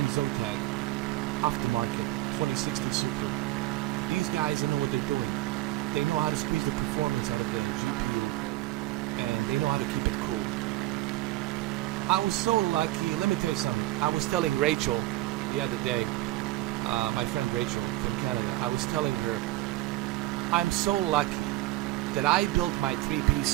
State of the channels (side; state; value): left; quieter; 17.5 dB